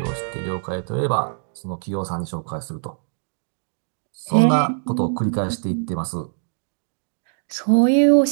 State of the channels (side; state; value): left; silent; digital silence